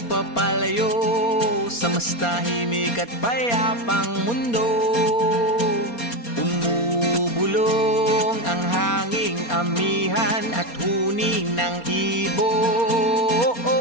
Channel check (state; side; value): late; right; 4.3 ms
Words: papalayo sa mas tahimik at payapang mundo. Umubulong ang hanging amihan at huni ng ibon.